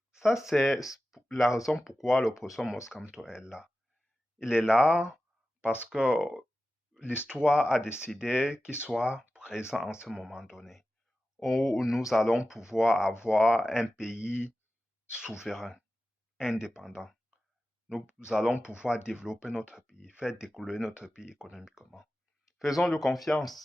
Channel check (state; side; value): normal; both; correlation 0.94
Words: Ça, c'est la raison pourquoi le professeur Moscamto est là. Il est là parce que l'histoire a décidé qu'il soit présent en ce moment donné, où nous allons pouvoir avoir un pays souverain, indépendant. Nous allons pouvoir développer notre pays, faire décoller notre pays économiquement. Faisons-lui